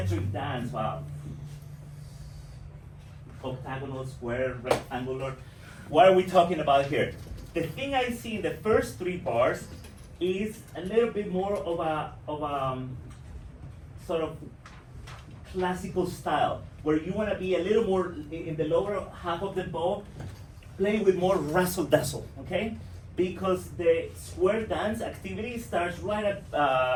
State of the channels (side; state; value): both; identical; correlation 1.00